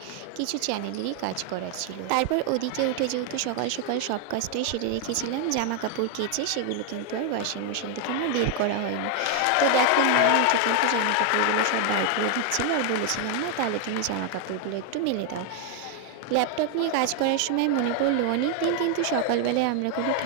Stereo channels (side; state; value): both; different; correlation 0.00